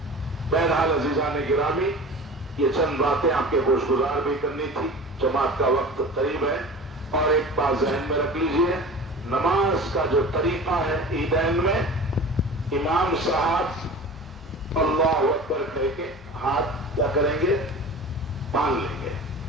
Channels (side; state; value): both; normal; correlation 0.37